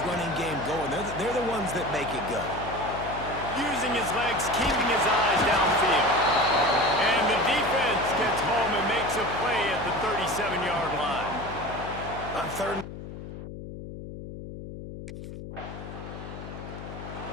running game going. They're the ones that make it go. Using his legs, keeping his eyes downfield. And the defense gets home and makes a play at the 37-yard line. On 3rd.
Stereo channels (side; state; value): left; noise; hum, 10 dB below the sound